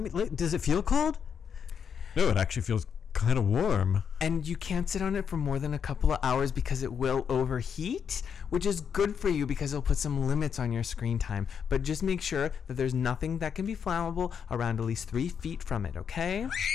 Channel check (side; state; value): right; quieter; 7.3 dB